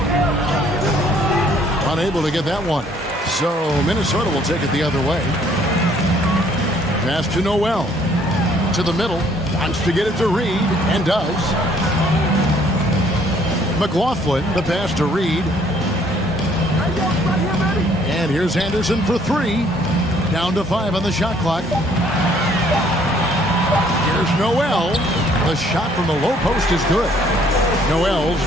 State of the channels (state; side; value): normal; both; correlation 0.62